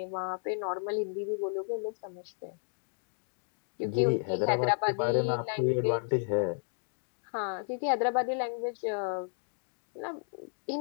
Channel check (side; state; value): right; silent; digital silence